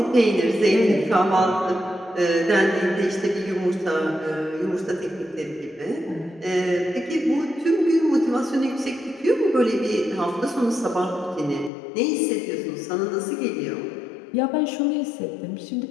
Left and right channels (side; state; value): right; drops out; at 11.7 s